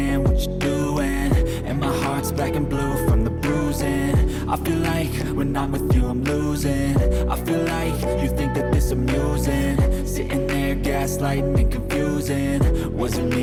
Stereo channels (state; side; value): identical; both; correlation 1.00